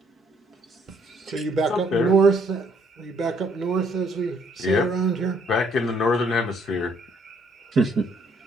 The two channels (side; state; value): both; normal; correlation 0.66